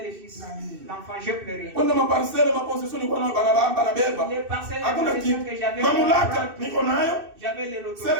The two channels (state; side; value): late; left; 2.6 ms